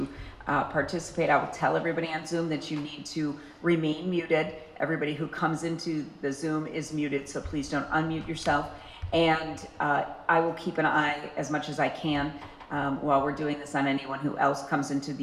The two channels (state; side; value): identical; both; correlation 1.00